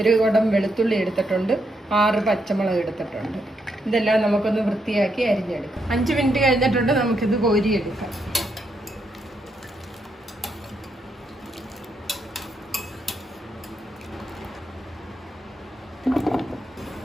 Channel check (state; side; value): normal; both; correlation 0.79